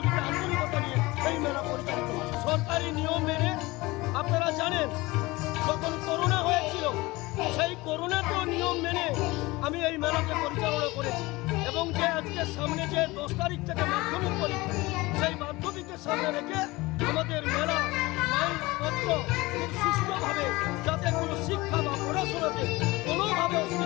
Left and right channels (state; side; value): quieter; right; 21.4 dB